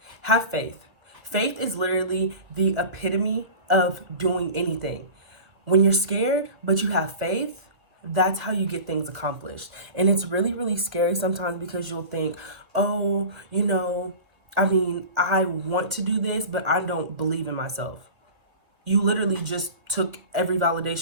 have faith. Faith is literally the epitome of doing anything. When you're scared, but you have faith, that's how you get things accomplished. And it's really, really scary sometimes because you'll think, oh, I want to do this, but I don't believe in myself. You literally just took every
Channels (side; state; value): left; late; 2.2 ms